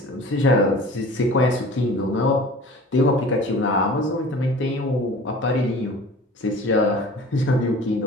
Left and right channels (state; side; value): normal; both; correlation 0.42